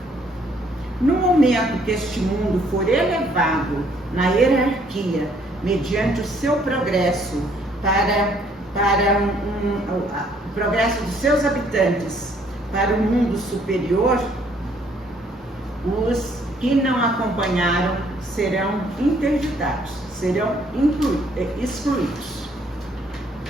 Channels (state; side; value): normal; both; correlation 0.64